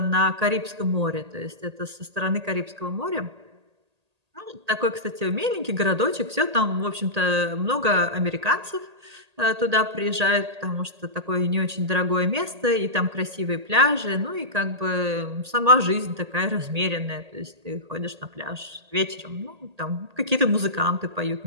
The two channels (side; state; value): left; late; 1.8 ms